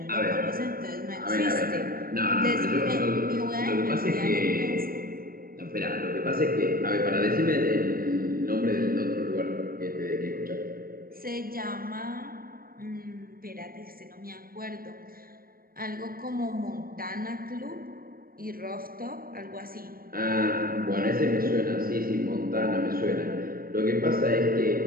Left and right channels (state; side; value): late; left; 0.42 ms